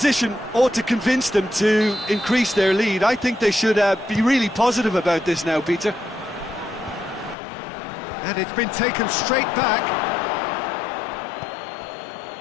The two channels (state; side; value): drops out; right; at 7.4 s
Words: ought to convince them to increase their lead. I think they should be really positive about this now, Peter. And it's been taken straight back.